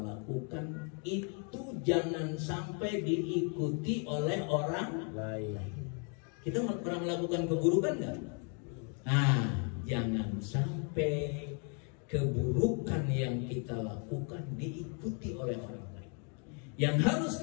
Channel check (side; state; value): right; quieter; 39.1 dB